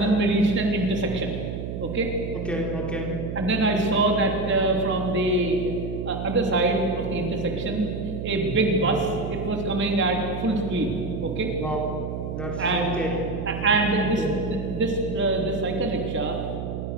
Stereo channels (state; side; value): noise; right; hum, 5 dB below the sound